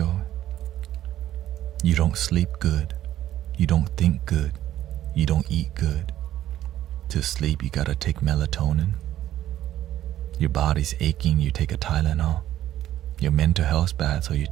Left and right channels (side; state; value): left; quieter; 12.8 dB